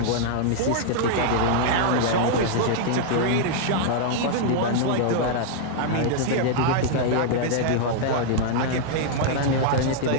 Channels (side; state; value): both; different; correlation -0.01